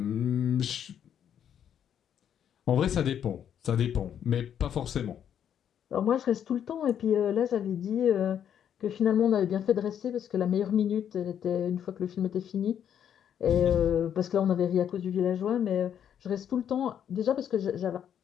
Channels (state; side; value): quieter; right; 9.2 dB